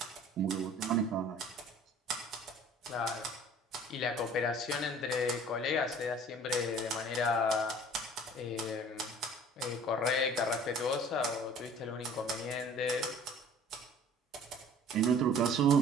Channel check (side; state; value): both; normal; correlation 0.49